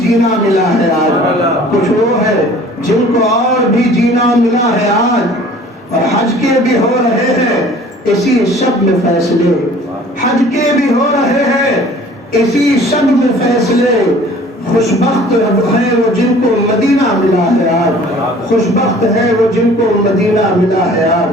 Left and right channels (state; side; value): normal; both; correlation 0.50